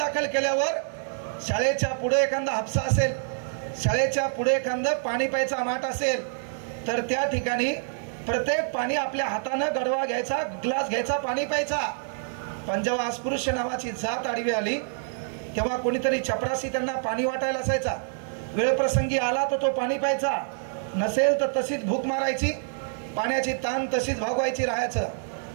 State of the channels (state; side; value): silent; left; 60 dB below the other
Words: केल्यावर शाळेच्या पुढे एखादा हापसा असेल, शाळेच्या पुढे एखादं पाणी प्यायचा माठ असेल, तर त्या ठिकाणी प्रत्येक पाणी आपल्या हातानं गडवा घ्यायचा, ग्लास घ्यायचा, पाणी प्यायचा. पण जेव्हा अस्पृश्य नावाची जात आडवी आली, तेव्हा कोणीतरी चपरासी त्यांना पाणी वाटायला असायचा. वेळ प्रसंगी आला तर तो पाणी प्यायचा, नसेल तर तशीच भूक मारायची, पाण्याची ताण तशीच भागवायची राहायचं.